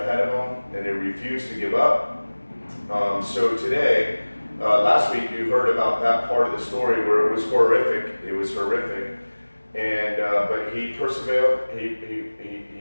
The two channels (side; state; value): both; inverted; correlation -1.00